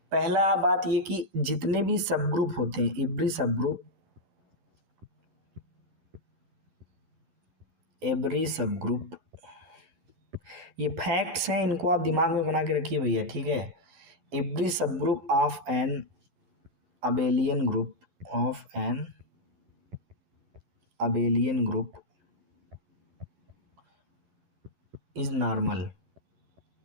पहला बात ये कि जितने भी सब ग्रुप होते हैं, एवरी सब ग्रुप, ये फैक्ट्स हैं, इनको आप दिमाग में बना के रखिए भैया। ठीक है, every subgroup of an abelian group is normal.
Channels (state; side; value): late; left; 11 ms